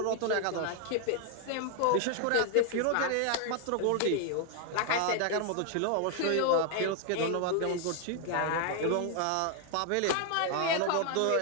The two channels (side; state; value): both; different; correlation 0.00